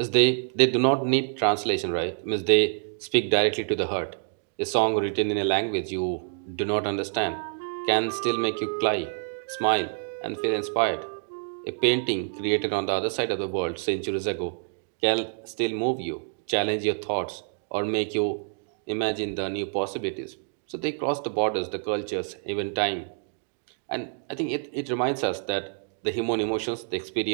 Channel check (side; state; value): left; silent; digital silence